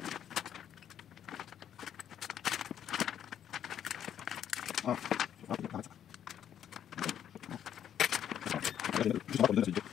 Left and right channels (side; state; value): right; quieter; 9.7 dB